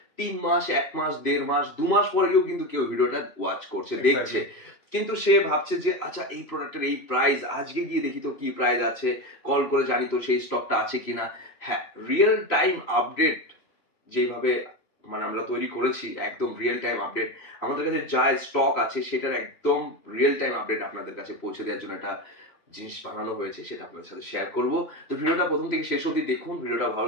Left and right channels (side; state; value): right; late; 3.0 ms